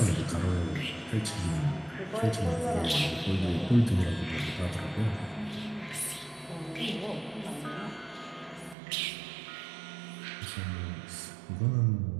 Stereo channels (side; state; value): left; drops out; at 8.8 s